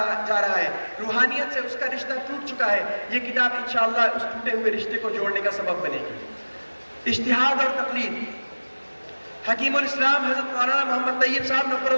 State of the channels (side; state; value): both; inverted; correlation -1.00